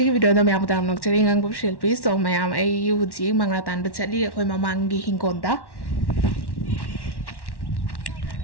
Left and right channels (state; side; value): late; right; 1.1 ms